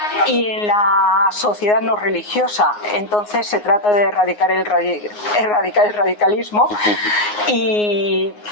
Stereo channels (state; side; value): late; right; 9.6 ms